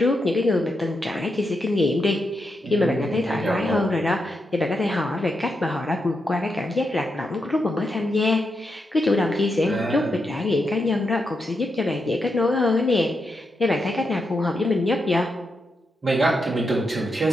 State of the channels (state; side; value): normal; both; correlation 0.85